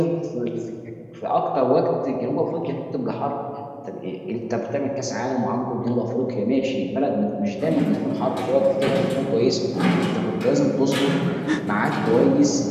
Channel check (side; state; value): both; identical; correlation 1.00